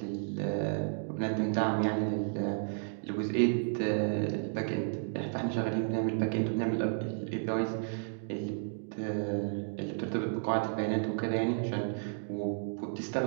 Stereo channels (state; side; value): silent; left; digital silence